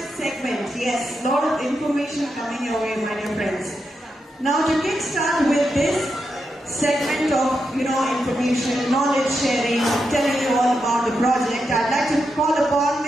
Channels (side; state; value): both; normal; correlation 0.85